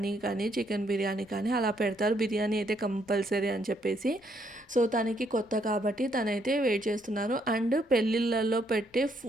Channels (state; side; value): normal; both; correlation 0.72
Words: కానీ చికెన్ బిర్యానీ కానీ అలా పెడతారు. బిర్యానీ అయితే కంపల్సరీ అని చెప్పేసి. సో తనకి కొత్త కాబట్టి తనైతే వెయిట్ చేస్తున్నారు. అండ్ పెళ్ళిళ్ళల్లో పెట్టే